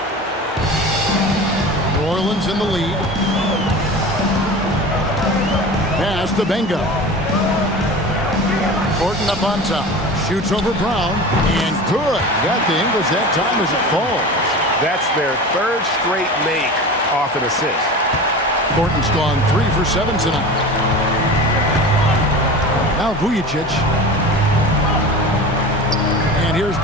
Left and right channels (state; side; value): normal; both; correlation 0.33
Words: New Orleans in the lead. Pass to Benga. Thornton up on top. Shoots over Brown. And good. Got the English that time as it falls. That's their third straight make off an assist. Thornton's gone 3 for 7 tonight. Now Vujicic. And here's